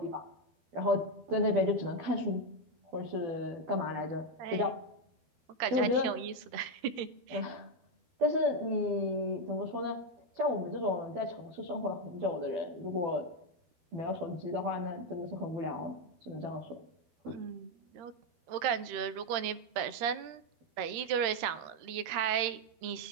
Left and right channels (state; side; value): late; left; 13 ms